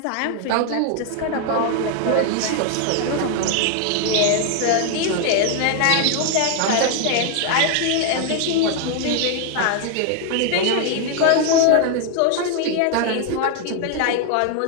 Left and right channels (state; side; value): different; both; correlation 0.00